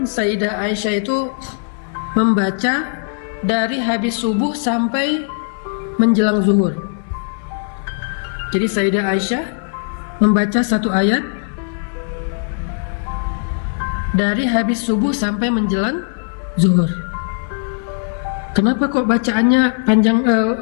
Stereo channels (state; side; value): silent; right; 65 dB below the other